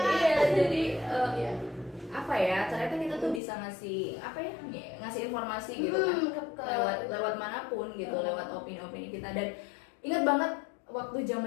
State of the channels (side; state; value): right; drops out; at 3.4 s